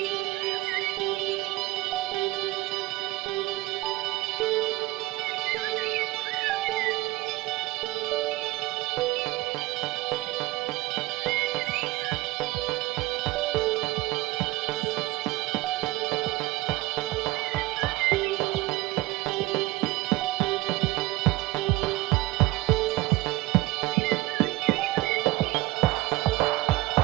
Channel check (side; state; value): left; quieter; 20.0 dB